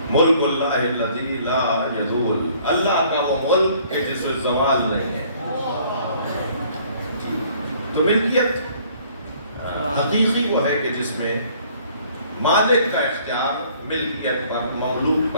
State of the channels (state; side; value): inverted; both; correlation -0.58